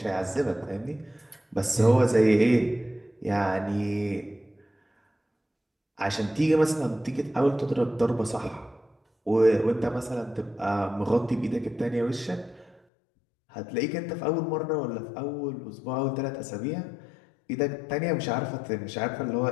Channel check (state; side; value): drops out; right; at 12.8 s